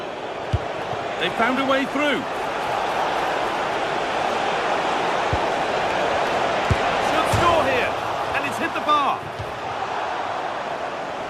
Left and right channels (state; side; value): identical; both; correlation 1.00